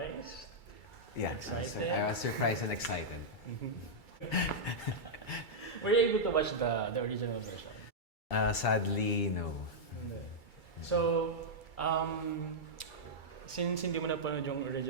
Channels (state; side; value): late; right; 2.3 ms